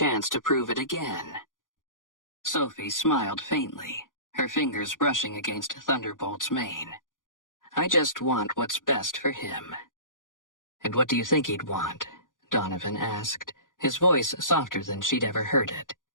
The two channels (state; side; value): late; right; 0.89 ms